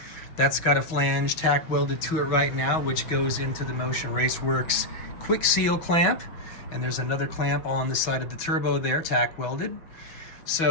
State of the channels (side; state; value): right; late; 6.1 ms